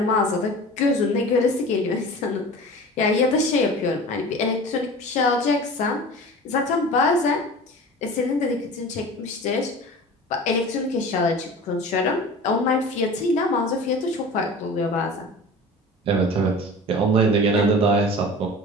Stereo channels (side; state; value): both; normal; correlation 0.37